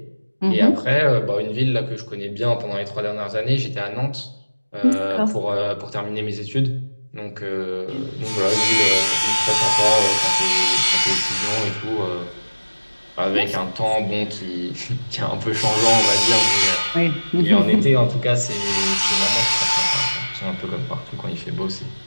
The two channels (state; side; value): inverted; both; correlation -1.00